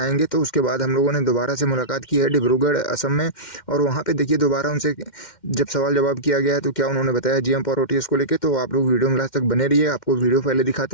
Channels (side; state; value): right; late; 2.1 ms